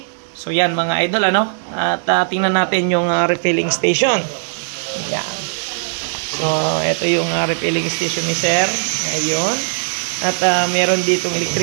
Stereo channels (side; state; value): left; silent; 67 dB below the other